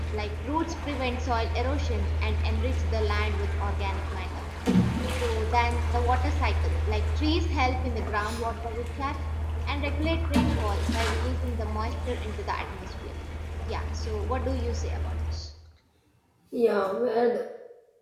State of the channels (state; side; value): identical; both; correlation 1.00